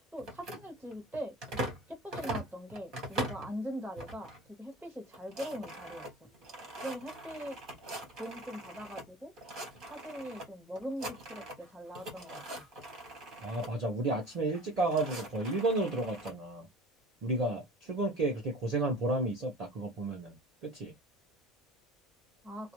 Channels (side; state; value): both; normal; correlation 0.39